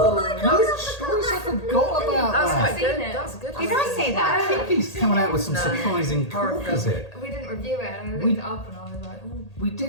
my God! Good choice. I forgot about That was that. quite good. it. That was a good. Did I say that? Kiki's coming out with some surprising corkers here. We didn't review it, and I looked it up, and I was like, ooh. We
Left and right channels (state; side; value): late; right; 1.8 ms